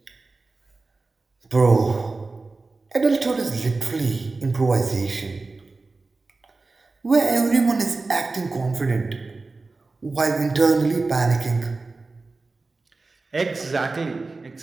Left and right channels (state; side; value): quieter; left; 3.7 dB